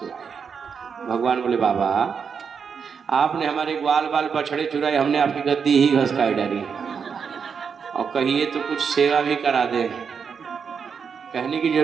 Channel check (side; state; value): left; quieter; 6.4 dB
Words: भगवान बोले बाबा आपने हमारे ग्वाल बाल बछड़े चुराए, हमने आपकी गद्दी ही घसकाई डाली, और कहिए तो कुछ सेवा भी करा दे, कहने की